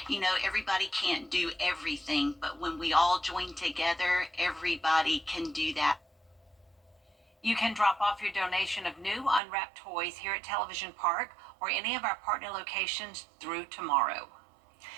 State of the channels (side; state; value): left; drops out; at 9.4 s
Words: You know, everybody can't do everything, but when we all join together, everybody can do that. You can drop off your donation of new unwrapped toys here at Television Park or any of our partner locations through tomorrow.